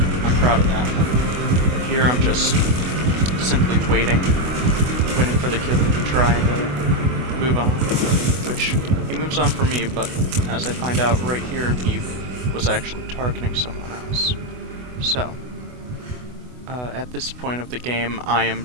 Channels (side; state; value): left; late; 24 ms